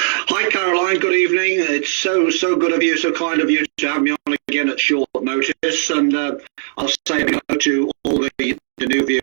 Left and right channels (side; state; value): left; silent; digital silence